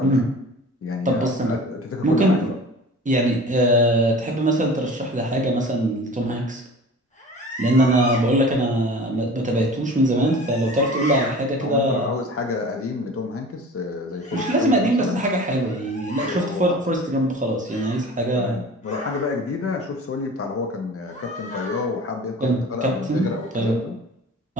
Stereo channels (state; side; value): normal; both; correlation 0.40